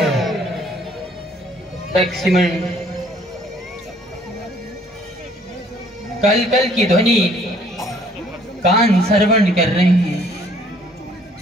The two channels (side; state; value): both; normal; correlation 0.60